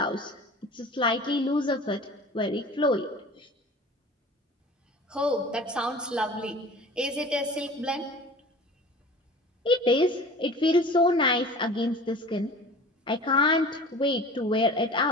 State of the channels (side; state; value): both; normal; correlation 0.40